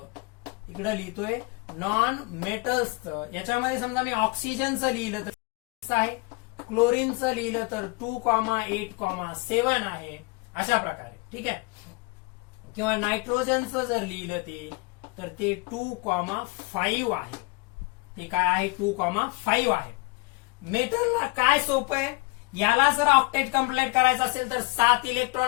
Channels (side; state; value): right; quieter; 27.9 dB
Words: इकडे लिहितोय नॉन मेटल्सचं. याच्यामध्ये समजा मी ऑक्सिजनचं लिहिलं तर आहे, क्लोरीनचं लिहिलं तर 2,8,7 आहे, अशा प्रकारे. ठीक आहे. किंवा नायट्रोजनचं जर लिहिलं तर ते 2,5 आहे. ते काय आहे? 2,5 आहे. मेटलला काय सोपं आहे, याला जर ऑक्टेट कंप्लीट करायचं असेल तर 7